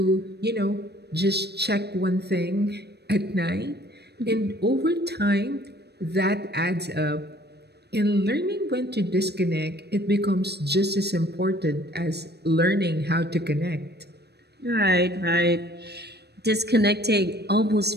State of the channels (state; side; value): late; left; 0.48 ms